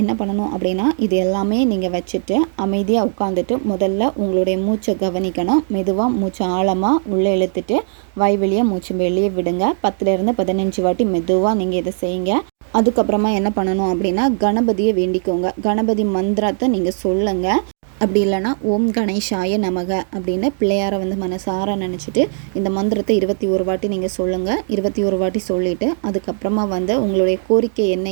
பண்ணணும் அப்படின்னா இது எல்லாமே நீங்கள் வச்சுட்டு அமைதியாக உட்காந்துட்டு முதல்ல உங்களுடைய மூச்சை கவனிக்கணும். மெதுவாக மூச்சை ஆழமாக உள்ளே இழுத்துட்டு வாய் வெளியே மூச்சு வெளியே விடுங்க. 10 to 15 வாட்டி மெதுவாக நீங்கள் இதை செய்யுங்க. அதுக்கப்புறமா என்ன பண்ணணும் அப்படின்னா கணபதியை வேண்டிக்கோங்க. கணபதி மந்திரத்தை நீங்கள் சொல்லுங்கள். அப்படி இல்லைனா ஓம் கணேஷாய நமக அப்படின்னு பிள்ளையாரை மனசார நினச்சிட்டு இந்த மந்திரத்தை 21 வாட்டி நீங்கள் சொல்லுங்கள். 21 வாட்டி சொல்லிவிட்டு அதுக்கப்புறமா உங்களுடைய கோரிக்கை என்ன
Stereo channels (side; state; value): left; silent; digital silence